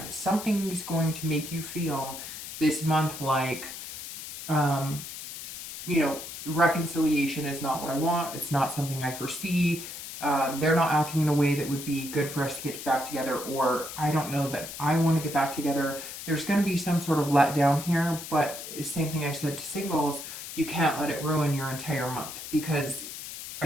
Something's going to make you feel this month like, you know, reconciliation is not what I want. It's not something I foresee. They're not acting in a way that would be good for us to get back together, or I don't know that I want to get back together. There's going to be some sort of letdown here, but same thing I said to singles, you can't let it ruin your entire month, because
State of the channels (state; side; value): noise; left; hiss, 10 dB below the sound